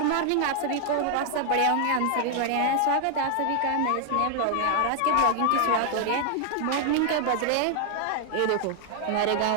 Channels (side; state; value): both; different; correlation 0.00